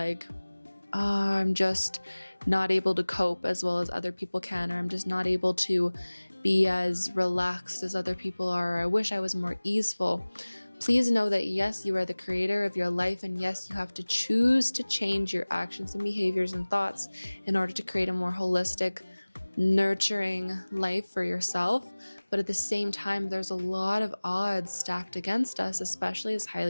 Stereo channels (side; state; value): both; inverted; correlation -1.00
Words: oh, I'm just not able to cope as well as other people can, or I'm just not able to be as relaxed as other people are, or I wish I was more easeful, please know that yes, you are the creator of your life, and yes, you have to choose to change your actions and behaviors and thoughts in order to create a more holistic, nurturing life for yourself. But at the same time, there's a lot of odds stacked against us, especially as